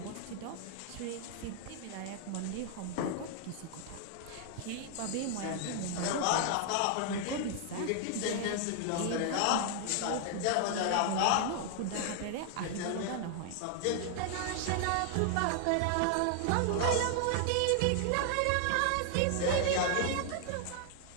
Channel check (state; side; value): different; both; correlation 0.00